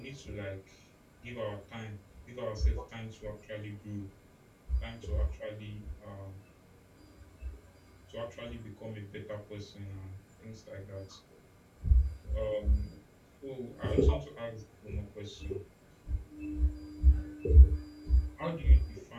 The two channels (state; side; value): identical; both; correlation 1.00